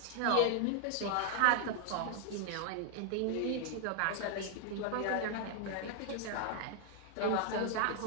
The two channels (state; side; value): different; both; correlation 0.00